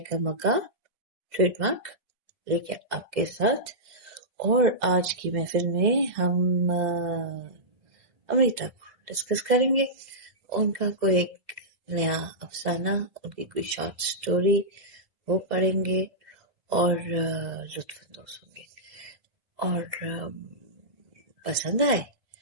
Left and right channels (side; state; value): left; late; 2.1 ms